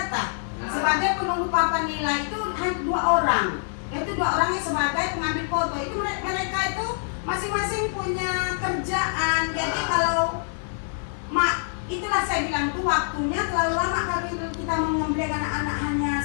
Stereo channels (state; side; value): silent; right; digital silence